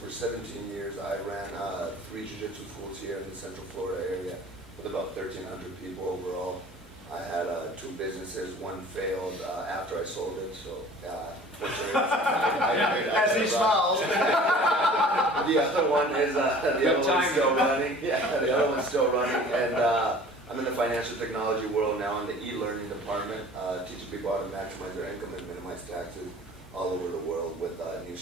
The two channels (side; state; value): both; normal; correlation 0.46